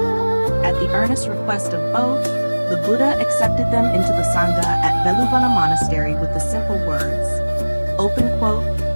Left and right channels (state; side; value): inverted; both; correlation -1.00